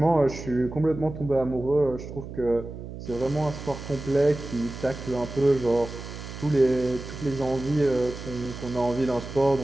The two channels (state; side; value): noise; right; hum, 11 dB below the sound